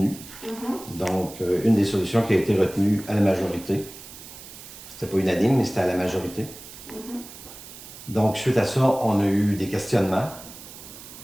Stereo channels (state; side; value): noise; right; hiss, 16 dB below the sound